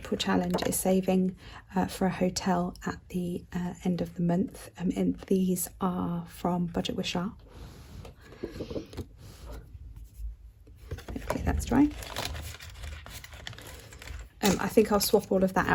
challenge is saving for a hotel at the end of the month. And these are from Budget with Shah. Okay, that's dry. I think I'll swap all of that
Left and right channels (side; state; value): both; identical; correlation 1.00